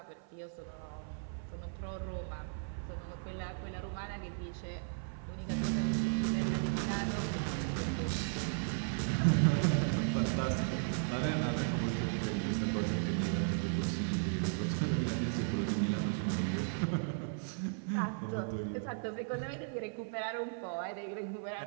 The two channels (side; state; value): left; silent; 54 dB below the other